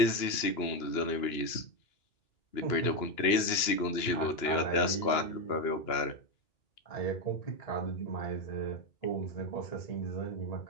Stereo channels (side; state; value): right; late; 2.9 ms